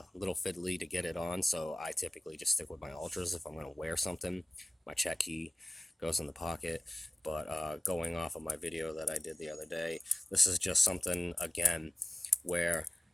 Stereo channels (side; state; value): both; normal; correlation 0.96